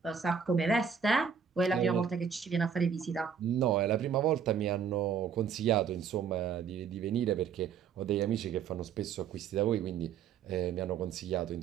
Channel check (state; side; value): quieter; left; 7.1 dB